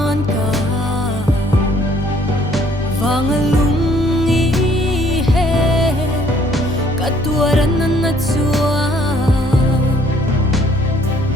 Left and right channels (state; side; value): normal; both; correlation 0.62